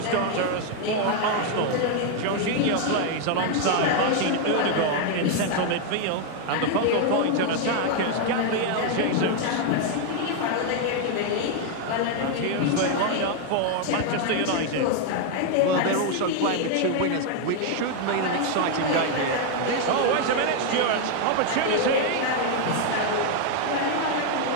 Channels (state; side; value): different; both; correlation 0.00